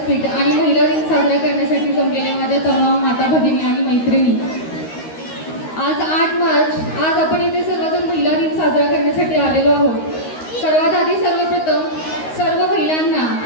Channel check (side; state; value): right; late; 13 ms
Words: आणि महिला दिन साजरा करण्यासाठी जमलेल्या माझ्या तमाम माता भगिनी आणि मैत्रिणी, आज 8 मार्च, आज आपण इथे सर्वजण महिला दिन साजरा करण्यासाठी आलेलो आहोत. सर्वात आधी सर्वप्रथम सर्व महिलांना,